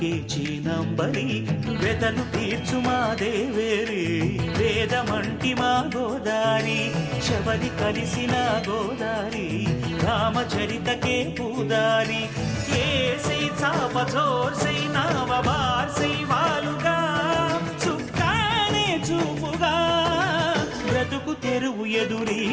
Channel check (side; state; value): both; identical; correlation 1.00